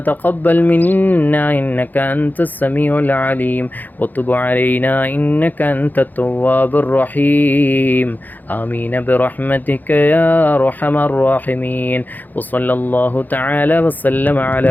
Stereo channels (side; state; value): right; late; 0.085 ms